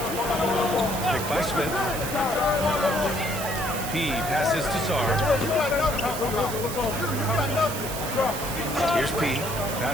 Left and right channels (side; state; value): right; noise; hiss, 8 dB below the sound